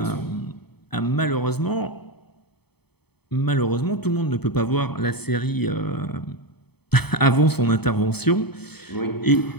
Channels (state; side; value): late; right; 0.97 ms